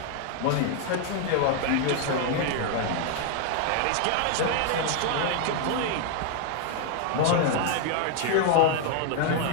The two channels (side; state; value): both; different; correlation 0.00